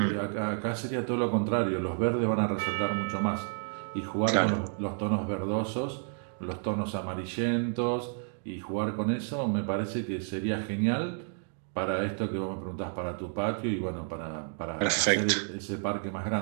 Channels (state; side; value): silent; left; 57 dB below the other